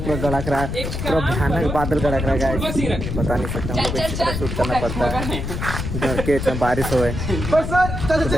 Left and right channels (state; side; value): noise; left; rumble, 4 dB below the sound